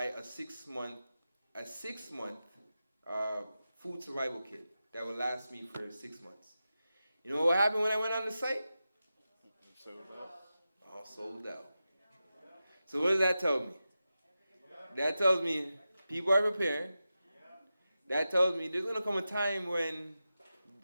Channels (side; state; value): both; inverted; correlation -0.92